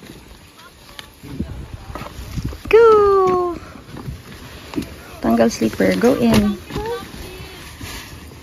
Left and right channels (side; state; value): both; identical; correlation 1.00